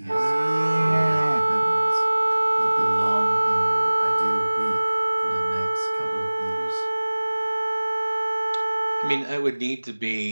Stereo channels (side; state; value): both; inverted; correlation -1.00